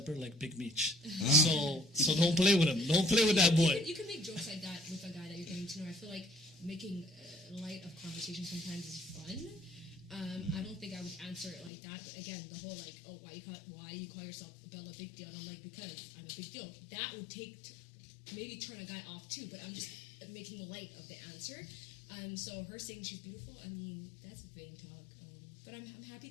like Big Meech. So don't play with him. Don't play with that boy. You can make jokes like that with a guy that you're getting to know. I feel like making light of conversation sometimes is fun. I don't think I would answer it like that. But again, the whole like, oh, why do you call yourself Bella Big Deal? And I'm like, because I'm a big deal. That would maybe turn a guy off too. But I'm just making light of the answer. So her saying she's beautiful, I mean, that's vain talk. But I'm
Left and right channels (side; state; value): right; drops out; at 11.7 s